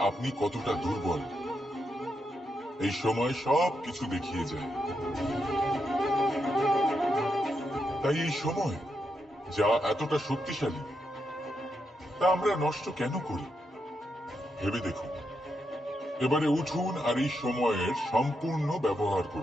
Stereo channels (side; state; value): both; normal; correlation 0.83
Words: আপনি কতটা দুর্বল। এই সময় সব কিছু দেখিয়ে যায়। তাই এই সময় যা এতটা শক্তিশালী, তা আমরা নষ্ট কেন করি? ভেবে দেখুন। এবারে উঠুন আর এই সময়ের সম্পূর্ণ ব্যবহার